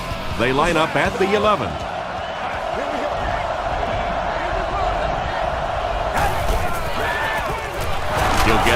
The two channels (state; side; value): identical; both; correlation 1.00